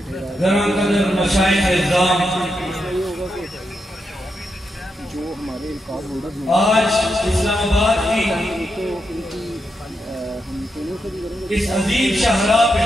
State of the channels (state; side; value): normal; both; correlation 0.84